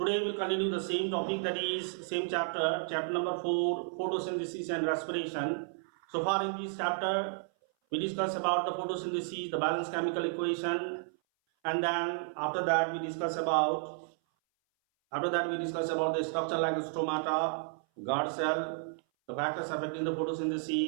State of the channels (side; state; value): left; silent; 56 dB below the other